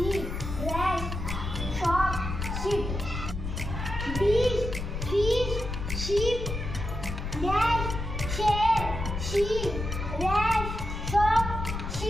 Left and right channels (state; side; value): noise; left; rumble, 5 dB below the sound